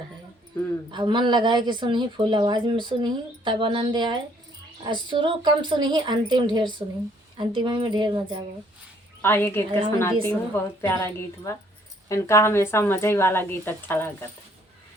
अब मन लगाए कि सुनी, फुल आवाज़ में सुनी तब आनंद आए। और शुरू कम सुनी, अंतिम ढेर सुनी, अंतिम में ढेर मजा आए। आइए गीत का सुनाती हूँ। बहुत प्यारा गीत बा। इनका हमेशा मजे वाला गीत अच्छा लगता है।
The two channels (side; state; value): both; normal; correlation 0.64